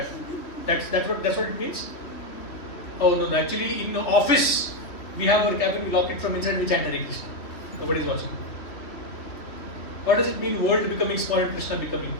what it means. Oh no, actually in the office we have our cabin, we lock it from inside, we chant Hare Krishna. Nobody is watching. What does it mean world becoming small and Krishna becoming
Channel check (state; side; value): late; right; 3.2 ms